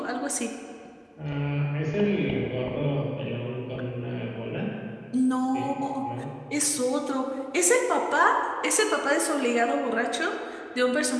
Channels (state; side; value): identical; both; correlation 1.00